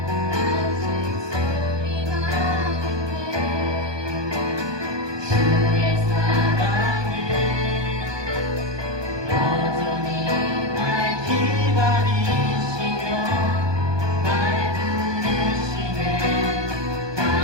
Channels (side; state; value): left; late; 1.2 ms